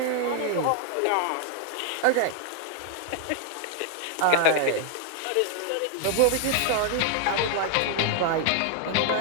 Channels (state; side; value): different; both; correlation 0.00